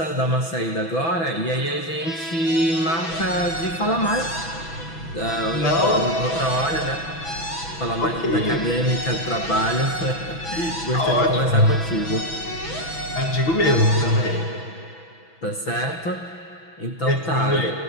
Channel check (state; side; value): late; right; 6.1 ms